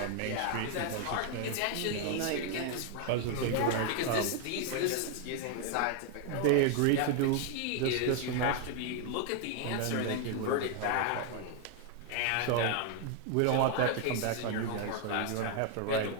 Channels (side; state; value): both; different; correlation 0.00